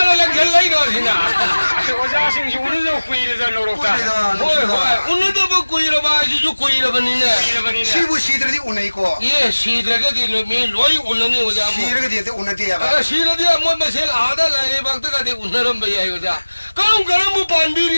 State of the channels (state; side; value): inverted; both; correlation -1.00